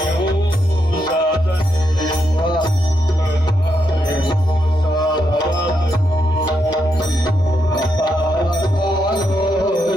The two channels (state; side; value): normal; both; correlation 0.81